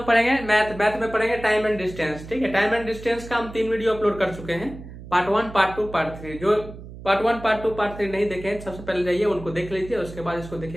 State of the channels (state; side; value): noise; right; hum, 14 dB below the sound